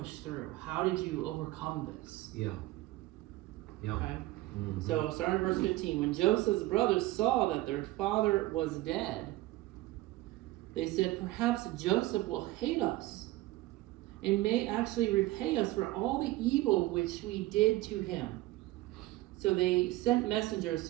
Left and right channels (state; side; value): quieter; left; 17.6 dB